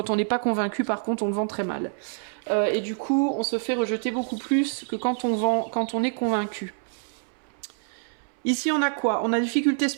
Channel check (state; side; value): silent; left; 61 dB below the other